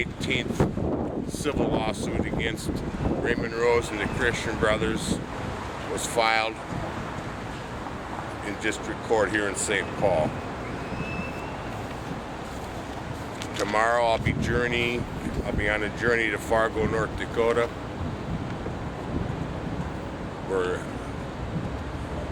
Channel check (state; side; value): identical; both; correlation 1.00